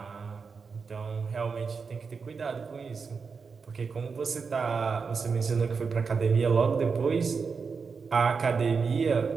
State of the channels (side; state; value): left; quieter; 5.3 dB